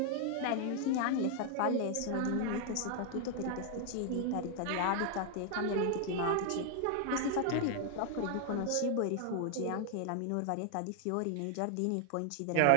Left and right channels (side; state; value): both; different; correlation 0.00